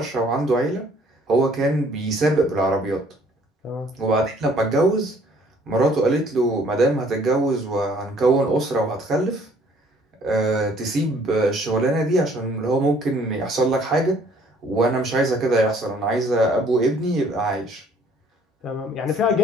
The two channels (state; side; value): normal; both; correlation 0.59